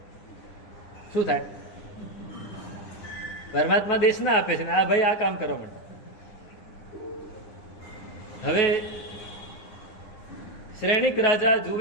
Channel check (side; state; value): right; late; 9.8 ms